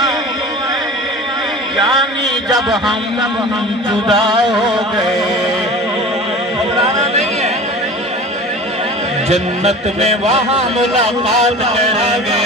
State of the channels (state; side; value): normal; both; correlation 0.38